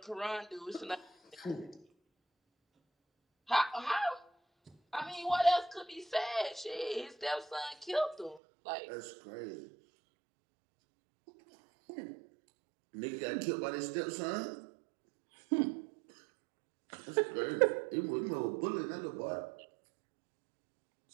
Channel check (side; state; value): left; drops out; at 8.4 s